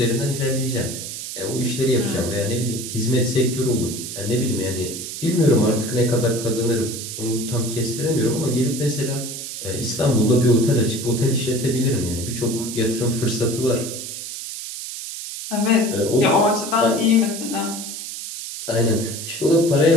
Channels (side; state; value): right; noise; hiss, 8 dB below the sound